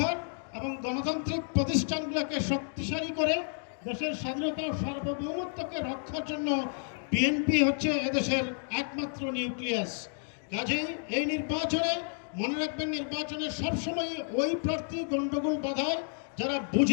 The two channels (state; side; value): silent; right; 57 dB below the other